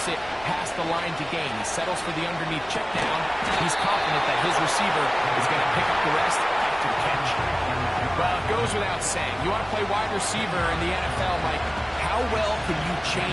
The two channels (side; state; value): left; noise; rumble, 22 dB below the sound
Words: it past the line to gain. He settles for the underneath check down. He's confident that his receiver is going to pick up the rest after the catch. Well, it goes without saying. You want to play wide receiver in the NFL, Mike, how well can you